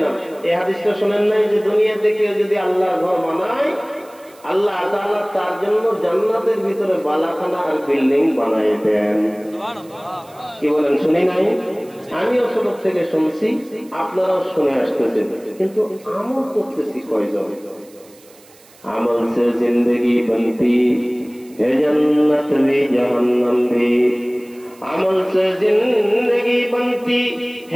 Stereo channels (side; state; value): right; noise; hiss, 26 dB below the sound